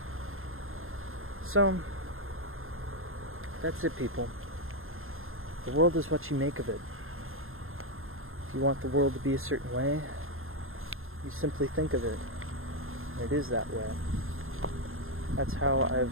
So, that's it, people. The world is what you make of it. If you want the world to be a certain way, you simply think of it. And it is that way. That's how I've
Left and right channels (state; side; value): late; left; 0.61 ms